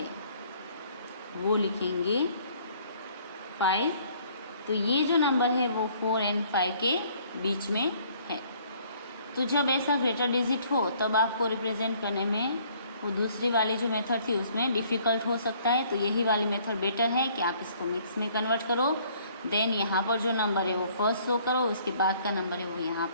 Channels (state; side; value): inverted; both; correlation -0.60